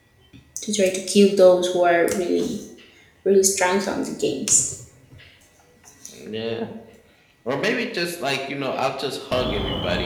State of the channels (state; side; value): identical; both; correlation 1.00